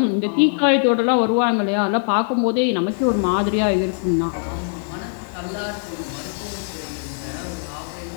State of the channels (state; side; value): silent; right; 59 dB below the other